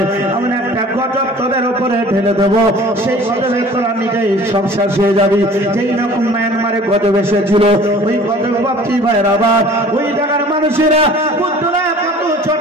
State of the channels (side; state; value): both; normal; correlation 0.47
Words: আমি একটা গজব তোদের উপরে ঢেলে দেবো, সেই গজবে তোরা নিজেই সব শেষ হয়ে যাবি। যেই রকম মায়ানমারে গজব এসেছিল ওই গজব বাপি ভাইয়ের আবার ওই জায়গার মানুষেরা বুদ্ধরা কত